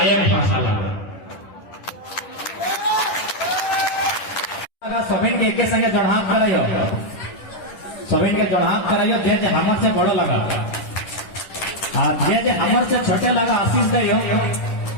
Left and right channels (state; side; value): late; right; 10 ms